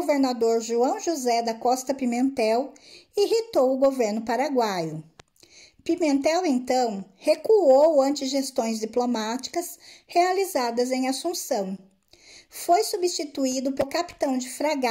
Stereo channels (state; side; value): identical; both; correlation 1.00